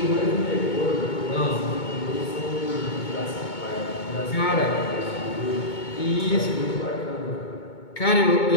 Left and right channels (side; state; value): right; late; 2.2 ms